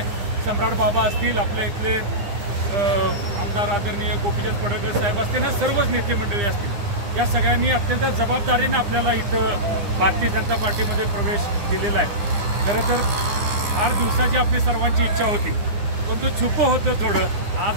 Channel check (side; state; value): left; late; 9.9 ms